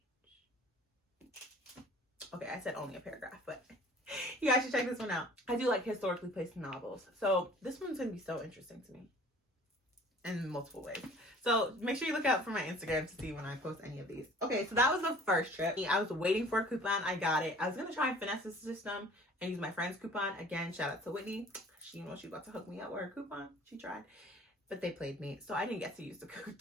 Okay, I said only a paragraph, but you guys should check this one out. I do like historically placed novels. So this one's going to be so interesting to me in multiple ways. So make sure you look out for my Instagram to see when I post any of these. Okay, so that was the first trip. I was waiting for a coupon. I got it. I was going to try and finesse the system and use my friend's coupon. Again, shout out to Whitney. She about to hook me up with her coupon. She tried. But they played me, so I didn't get to use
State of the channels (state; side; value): normal; both; correlation 0.49